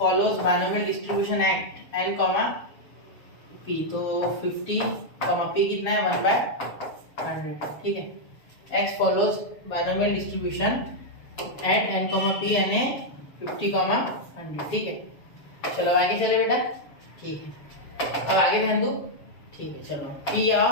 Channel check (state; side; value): late; right; 7.1 ms